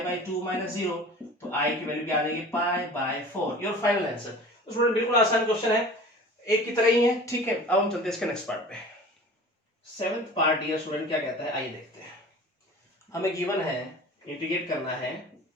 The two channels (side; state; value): both; normal; correlation 0.40